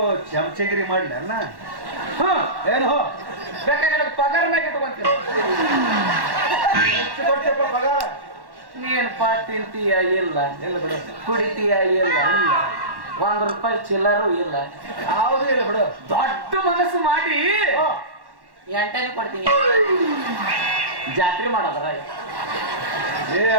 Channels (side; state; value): left; late; 1.1 ms